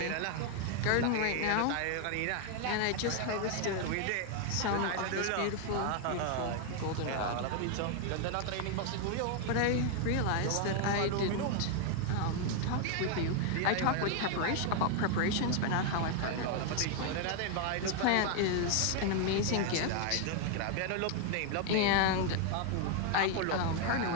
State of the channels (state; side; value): different; both; correlation 0.01